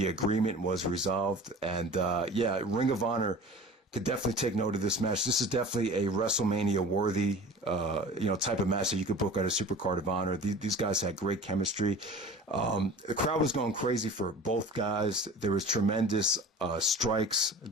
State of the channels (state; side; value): normal; both; correlation 0.40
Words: agreement was resolved. And Ring of Honor could definitely take note of this match. This is definitely a WrestleMania worthy, type of match that you could book at a Supercard of Honor. These guys had great chemistry. The crowd was going crazy for both guys. There was tremendous strikes,